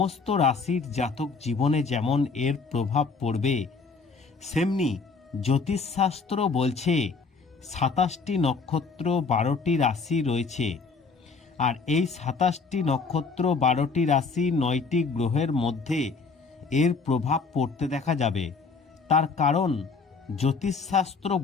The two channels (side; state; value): right; quieter; 4.7 dB